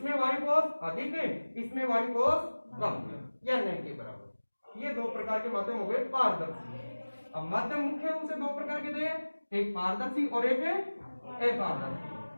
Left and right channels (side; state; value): both; inverted; correlation -1.00